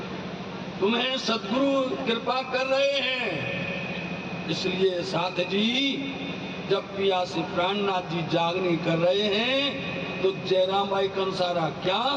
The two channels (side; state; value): both; identical; correlation 1.00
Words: तुम्हें सद्गुरु कृपा कर रहे हैं। इसलिए साथ जी जब पियासी प्राणनाथ जी जागने कर रहे हैं तो जयराम भाई कंसारा क्या,